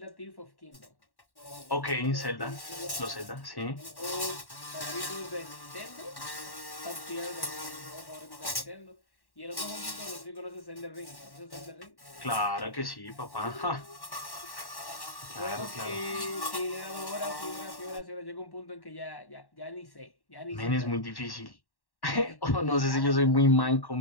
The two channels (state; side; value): late; right; 1.1 ms